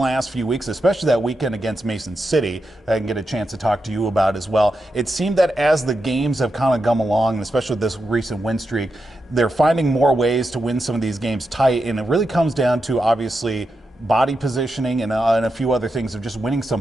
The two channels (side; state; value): both; normal; correlation 0.87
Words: few weeks, especially that weekend against Mason City, I can get a chance to talk to you about as well. It seemed that as the games have kind of come along, and especially this recent win streak, they're finding more ways to win some of these games tight. And it really comes down to obviously body positioning and a few other things of just winning some